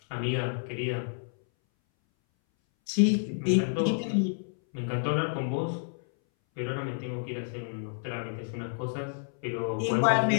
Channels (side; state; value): right; silent; 58 dB below the other